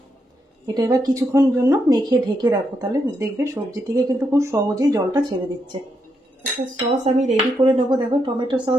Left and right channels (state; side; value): normal; both; correlation 0.81